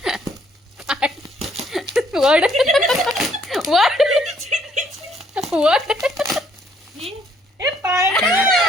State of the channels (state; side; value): normal; both; correlation 0.66